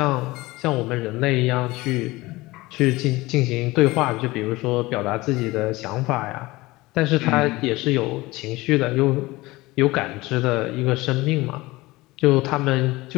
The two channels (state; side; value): quieter; right; 20.5 dB